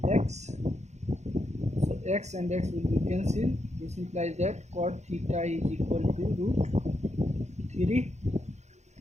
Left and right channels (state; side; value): late; left; 0.33 ms